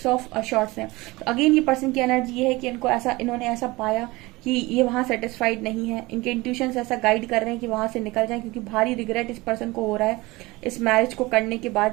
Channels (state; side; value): quieter; left; 21.7 dB